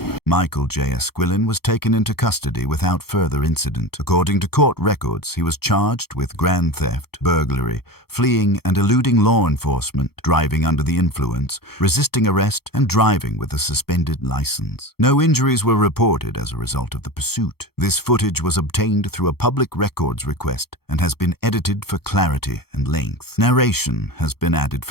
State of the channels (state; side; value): late; right; 0.95 ms